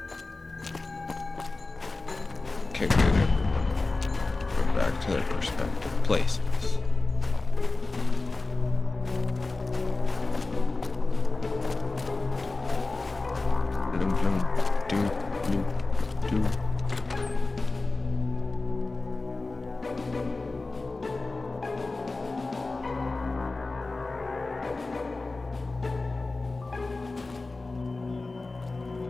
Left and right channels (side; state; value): right; quieter; 3.4 dB